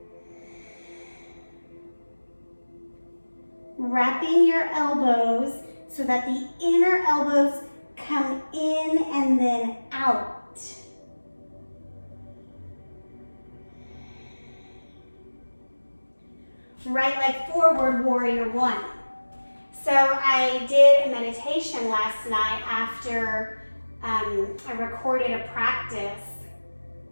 Wrapping your elbows so that the inner elbows come in and then out. Right leg forward, warrior one. So I did a meditation last night after I recorded a practice,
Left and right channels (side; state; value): both; inverted; correlation -1.00